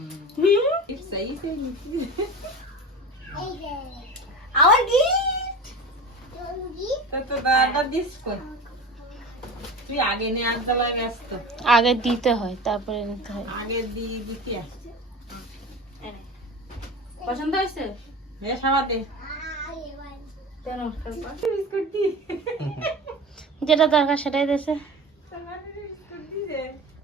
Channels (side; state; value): both; normal; correlation 0.32